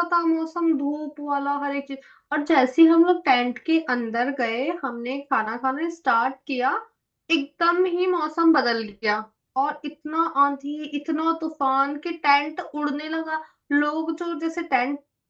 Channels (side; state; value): both; identical; correlation 1.00